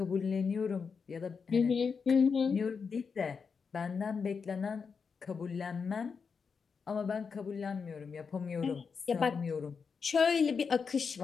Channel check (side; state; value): right; quieter; 5.6 dB